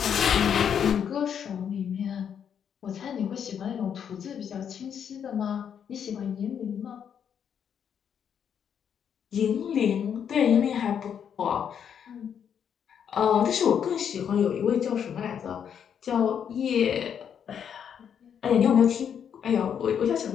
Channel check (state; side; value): quieter; right; 8.1 dB